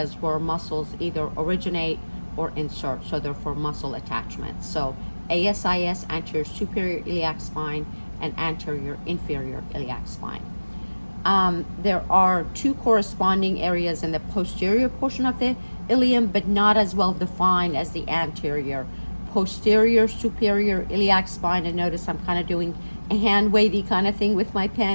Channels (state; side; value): inverted; both; correlation -1.00